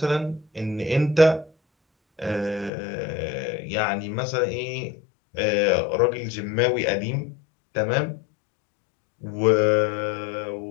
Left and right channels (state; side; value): drops out; right; at 2.7 s